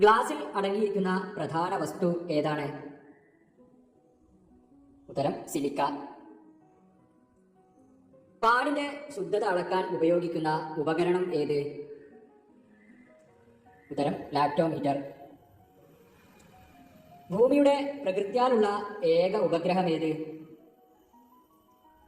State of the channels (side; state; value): both; identical; correlation 1.00